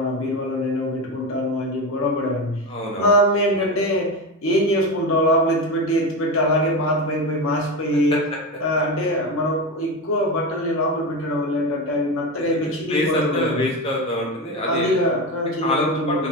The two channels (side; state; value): both; normal; correlation 0.19